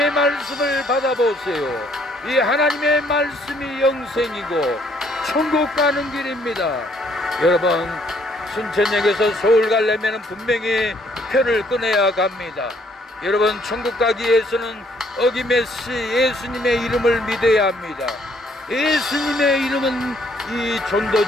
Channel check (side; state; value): both; normal; correlation 0.66